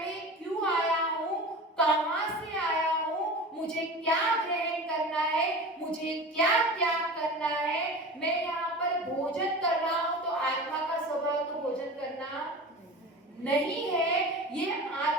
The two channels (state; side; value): normal; both; correlation 0.34